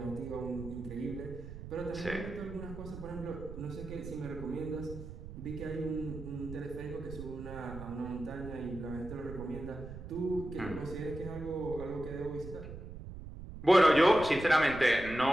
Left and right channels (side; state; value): right; noise; rumble, 11 dB below the sound